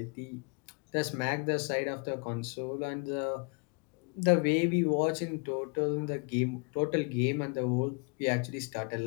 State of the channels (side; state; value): right; quieter; 34.6 dB